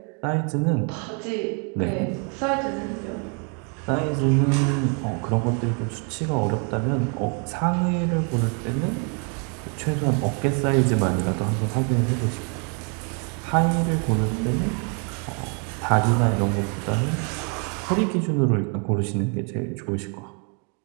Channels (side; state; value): left; quieter; 37.7 dB